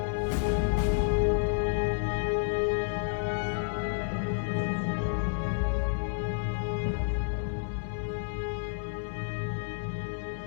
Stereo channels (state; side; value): silent; right; digital silence